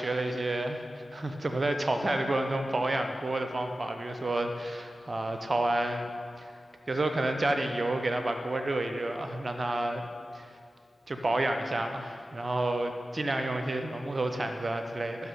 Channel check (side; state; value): both; normal; correlation 0.94